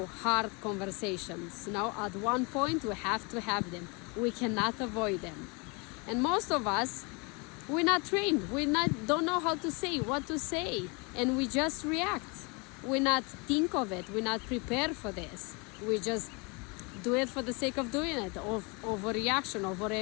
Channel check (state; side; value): quieter; right; 30.4 dB